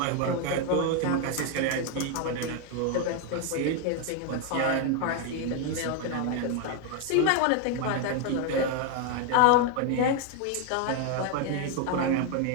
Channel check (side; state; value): both; different; correlation 0.01